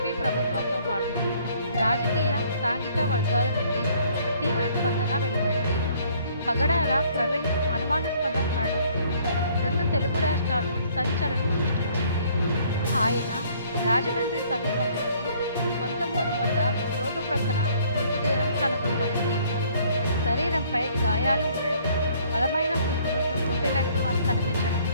ప్రభుత్వంతో పాటు రాజకీయ, సాంఘిక వర్గాల నుండి తీవ్ర స్పందన వెలువడింది. పగడాల ప్రవీణ్ అనుమానాస్పద మరణం రెండు తెలుగు రాష్ట్రాల్లో సంచలనం సృష్టించింది. ఆయన రాజమండ్రి సమీపంలోని కొంతమూరు వద్ద రోడ్డు ప్రక్కన మృతదేహం కనుగొనబడింది. శరీరంపై గాయాలు ఉండడం, బలమైన కుర్తులతో కొట్టినట్లు కనిపించడం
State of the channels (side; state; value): both; inverted; correlation -0.60